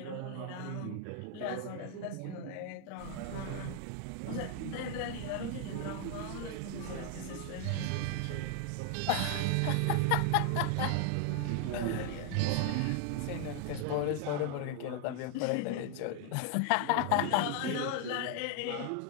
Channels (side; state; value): both; different; correlation 0.00